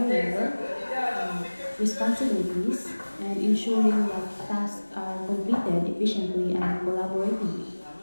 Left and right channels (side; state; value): both; inverted; correlation -1.00